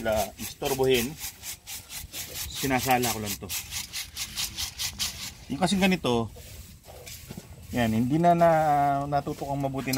istorbohin. Sinasala ko lang to. Yung kasing ganito, yan, hindi na natutukang mabuti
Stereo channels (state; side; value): identical; both; correlation 1.00